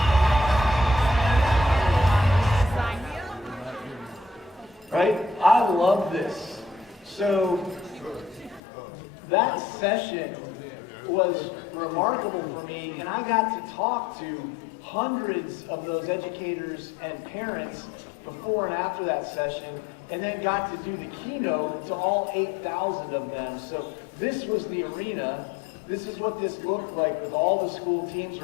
Right? I love this. So that session was remarkable for me, and I got to talk to hundreds of those educators and parents before and after that session, and then got to do the keynote to all 8,000 of them. So this was the arena. This is what this looked like with all the school teams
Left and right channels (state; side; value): drops out; right; at 8.6 s